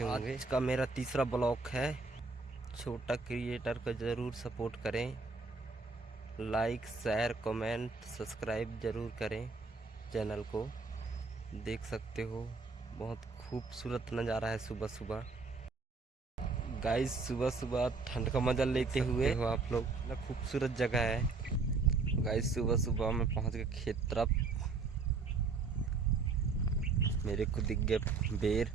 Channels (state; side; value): quieter; left; 4.2 dB